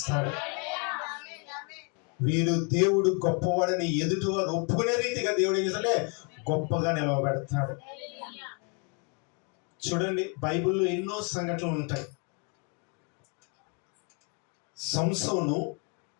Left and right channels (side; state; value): right; quieter; 36.8 dB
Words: వీరు దేవుడు గొప్పవాడని ఎదుటి వారు ఒప్పుకునే రీతిగా దేవుడు ఏం చేస్తాడే గొప్పగా నిలవబెడతాడు. చూడండి, బైబిల్లో ఎన్నో సంఘటనలు ఉంటాయి. సంసోను